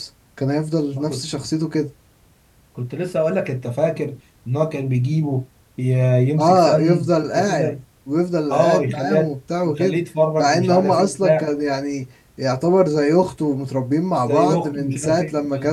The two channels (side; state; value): both; identical; correlation 1.00